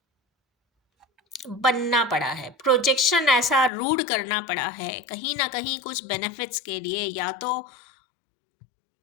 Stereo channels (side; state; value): right; drops out; at 3.7 s